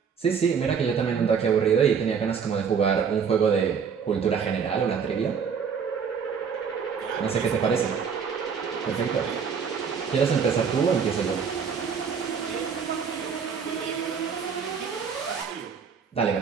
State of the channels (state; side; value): quieter; left; 6.6 dB